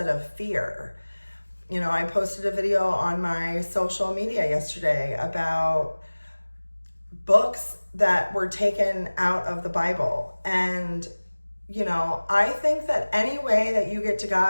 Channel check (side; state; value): both; inverted; correlation -1.00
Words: of fear. I posted a video on my social media yesterday about books that were taken out of the Bible. And I think that any way that you get to